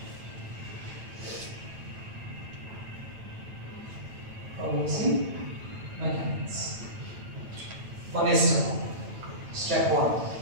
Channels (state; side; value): late; left; 9.0 ms